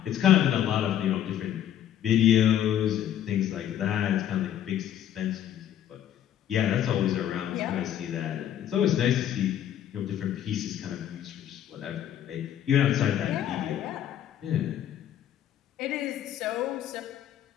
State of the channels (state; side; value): quieter; right; 10.8 dB